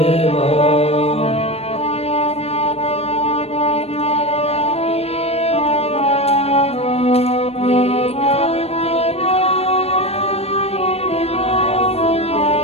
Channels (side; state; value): right; late; 0.29 ms